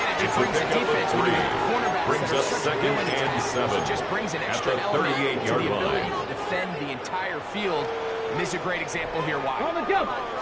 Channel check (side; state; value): both; identical; correlation 1.00